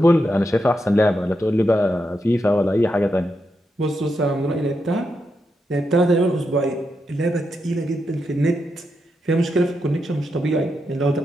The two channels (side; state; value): both; normal; correlation 0.84